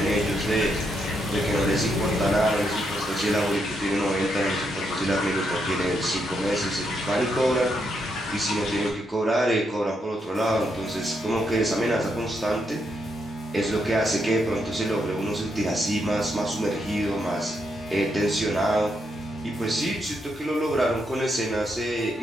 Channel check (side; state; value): both; normal; correlation 0.79